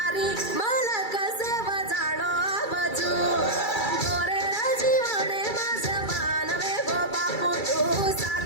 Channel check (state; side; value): late; right; 2.3 ms